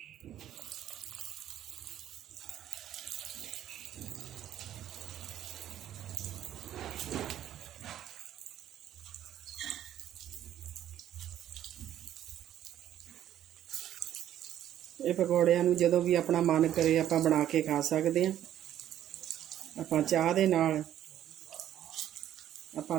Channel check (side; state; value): left; quieter; 11.5 dB